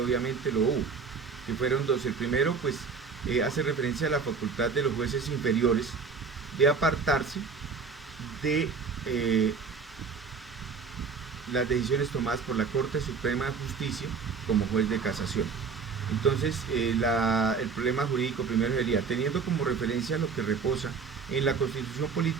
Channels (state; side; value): quieter; left; 5.3 dB